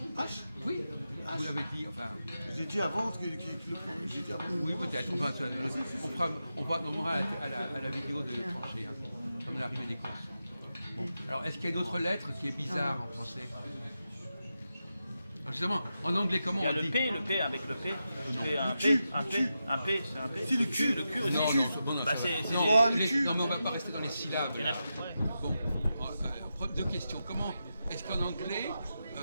H. Oui. Vous l'avez dit. Enfin. J'ai dit avant que le j'ai dit avant. Oui, peut-être. Enfin, on aura à la vidéo de trancher, hein, comme l'arrivée des courses. Bon. Alors, est-ce qu'il y a une autre lettre qui est bizarre en français? Alors, justement, en anglais, comment Il y a on le dit? P, avec le P. C'est un Q, P, un P, Q. un P, c'est un P. C'est le Q. Le Q aussi. Non, non, Bah, ça va. c'est- Non, Oh, le les- cul. non, mais on va pas rester dans les syllabes. Il y en a- là. ouais. Bon, deux questions. Comment est-ce qu'en anglais,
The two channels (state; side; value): inverted; both; correlation -0.89